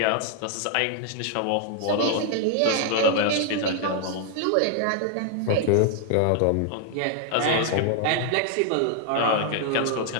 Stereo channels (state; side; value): different; both; correlation 0.00